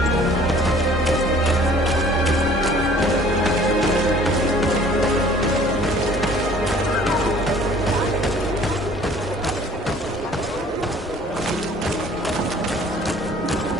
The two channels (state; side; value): normal; both; correlation 0.53